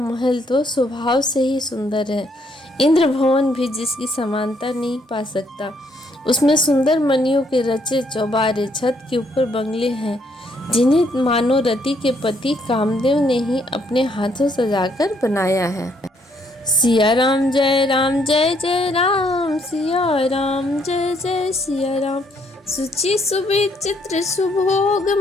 तो स्वभाव से ही सुंदर है, इंद्र भवन भी जिसकी समानता नहीं पा सकता। उसमें सुंदर मणियों के रचे चौबारे, छत के ऊपर बंगले हैं जिन्हें मानो रति के पति कामदेव ने ही अपने हाथों सजाकर बनाया है। सिया राम जय राम, सिया राम जय जय सिया राम। सुचि सुविचित्र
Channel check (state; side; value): normal; both; correlation 0.70